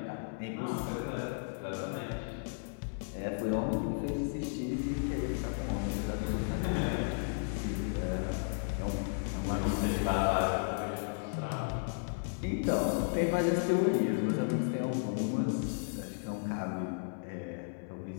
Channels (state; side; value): silent; right; 55 dB below the other